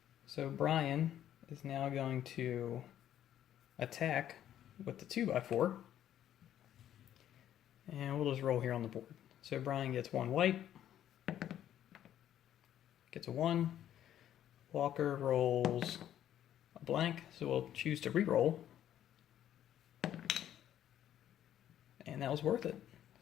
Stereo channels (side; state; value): right; quieter; 11.1 dB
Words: So Brian is now going to attack with the 2x4. And we'll just roll here on the board. So Brian gets 1 white. Gets a 1. Walker rolls a blank, so we'll choose to re-roll. And that was worth it.